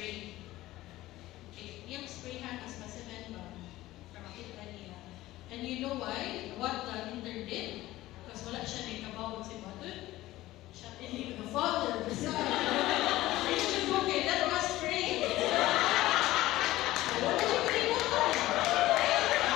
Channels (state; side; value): quieter; right; 16.6 dB